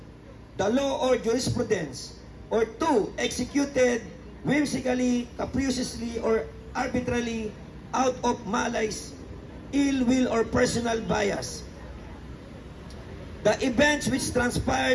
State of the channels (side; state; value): both; identical; correlation 1.00